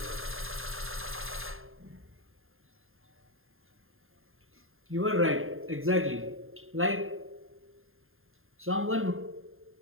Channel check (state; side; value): late; left; 0.60 ms